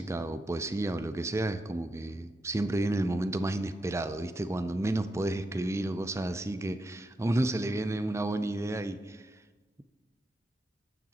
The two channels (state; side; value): normal; both; correlation 0.85